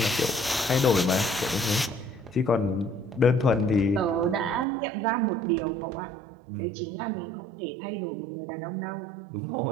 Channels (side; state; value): left; drops out; at 4.7 s